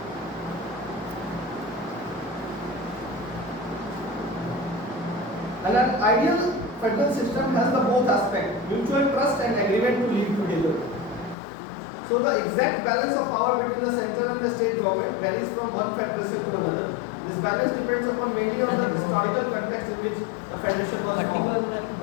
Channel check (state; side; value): drops out; right; at 11.4 s